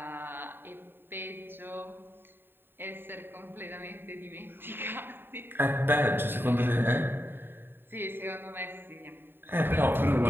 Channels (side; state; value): left; late; 0.10 ms